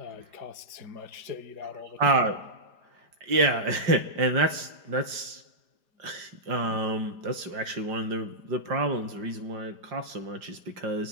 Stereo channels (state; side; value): late; left; 5.0 ms